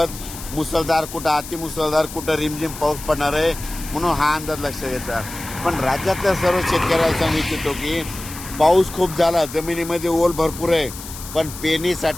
मुसळधार, कुठं अतिमुसळधार, कुठं रिमझिम पाऊस पडणार आहे म्हणून हा अंदाज लक्षात येतो। पण राज्यातल्या सर्व शेतकऱ्याला सांगू इच्छितो की पाऊस खूप झाला, जमिनीमध्ये ओल भरपूर आहे, पण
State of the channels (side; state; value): left; noise; hiss, 12 dB below the sound